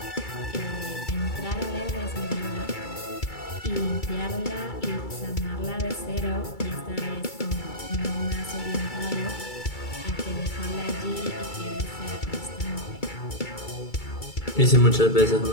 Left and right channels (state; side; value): late; right; 2.3 ms